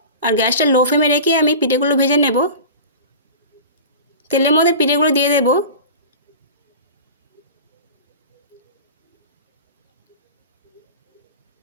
আর গ্যাসটা লো ফ্লেমে রেখে আমি পিঠেগুলো ভেজে নেব। তেলের মধ্যে পিঠেগুলো দিয়ে দেব।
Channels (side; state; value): both; inverted; correlation -0.34